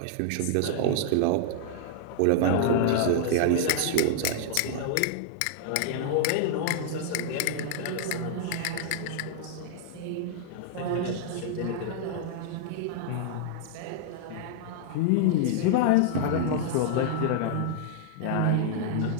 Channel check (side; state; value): both; different; correlation -0.01